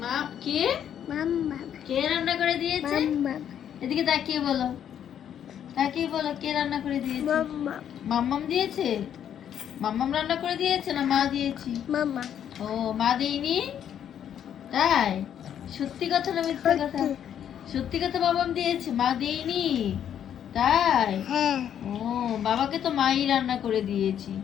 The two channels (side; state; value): right; quieter; 9.5 dB